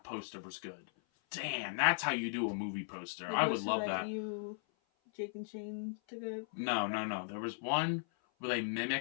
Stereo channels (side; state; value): right; silent; 53 dB below the other